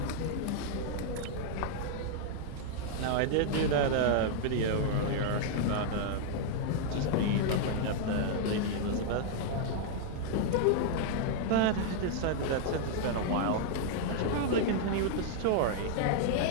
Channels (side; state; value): both; different; correlation 0.00